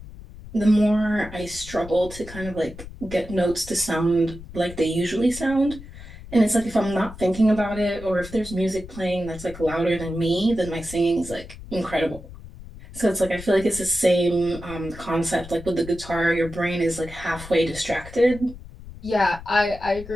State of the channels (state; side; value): noise; left; rumble, 15 dB below the sound